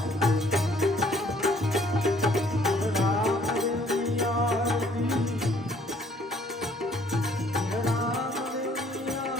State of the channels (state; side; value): normal; both; correlation 0.61